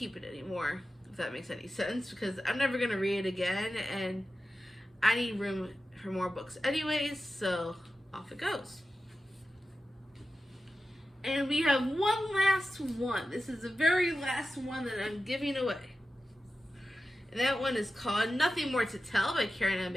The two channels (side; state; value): both; normal; correlation 0.93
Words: it anymore, if that makes any sense, because I'm never going to read it again, and I need room for more books anyways, so off it goes. And we have one last one. This is the very last one that I'm giving away. And that one is called Nothing More to Tell by Karen M.